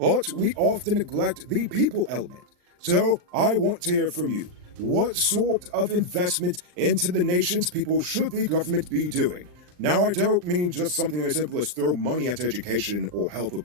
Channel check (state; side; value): late; left; 39 ms